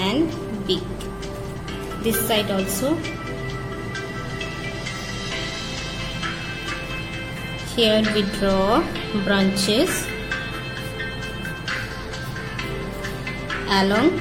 beak. This side also. Here we draw branches along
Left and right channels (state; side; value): identical; both; correlation 1.00